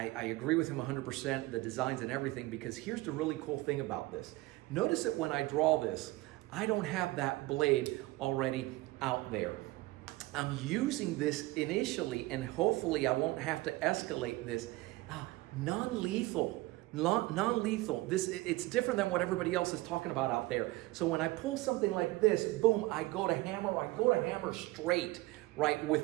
agree with him 100%, the designs and everything, because here's the really cool thing about this. Notice that when I draw this, I don't have that blade already out there. I'm using this initially, and hopefully I won't have to escalate this. Non-lethal. It's different than what everybody else is talking about out there. So when I pull something like this, boom, I go to hammer straight, right,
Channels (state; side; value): quieter; left; 19.9 dB